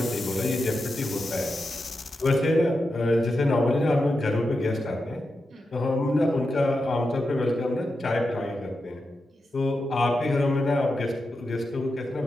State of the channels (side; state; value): both; normal; correlation 0.89